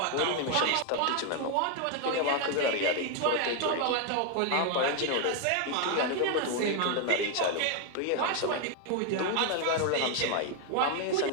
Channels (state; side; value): different; both; correlation 0.01